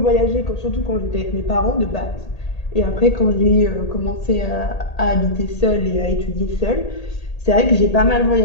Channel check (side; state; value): right; late; 1.8 ms